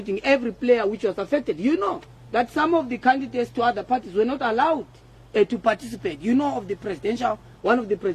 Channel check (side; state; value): both; identical; correlation 1.00